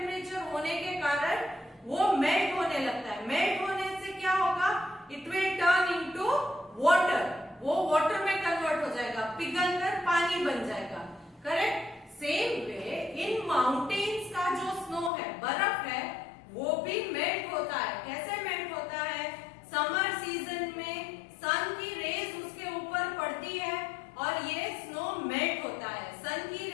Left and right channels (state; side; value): drops out; right; at 15.1 s